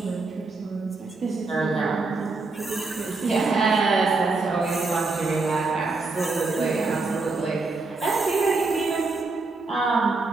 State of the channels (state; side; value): quieter; left; 3.7 dB